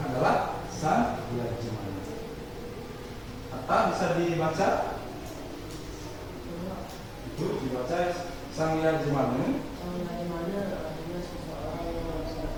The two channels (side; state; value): both; identical; correlation 1.00